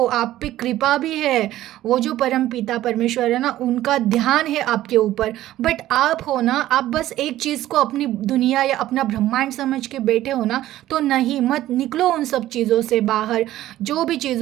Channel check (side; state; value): left; quieter; 14.2 dB